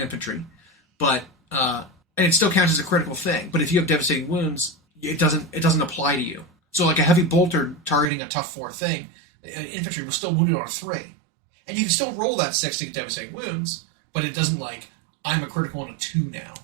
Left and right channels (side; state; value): left; drops out; at 8.1 s